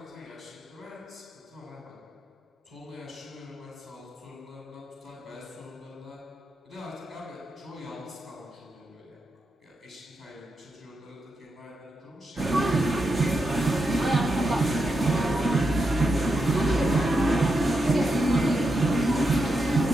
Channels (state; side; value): normal; both; correlation 0.86